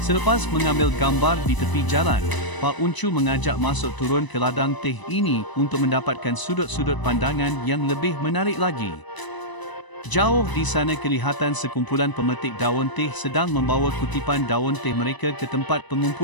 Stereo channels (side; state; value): right; late; 1.0 ms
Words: Selepas mengambil gambar di tepi jalan, Pak Uncu mengajak masuk turun ke ladang teh ini untuk mendapatkan sudut-sudut pandangan yang lebih menarik lagi. Jauh di sana kelihatan sekumpulan pemetik daun teh sedang membawa kutipan daun teh mereka ke tempat